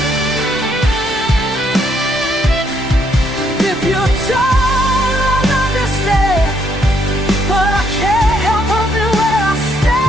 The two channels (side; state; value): both; normal; correlation 0.72